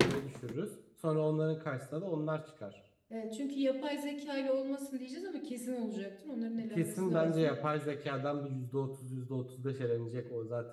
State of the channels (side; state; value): both; identical; correlation 1.00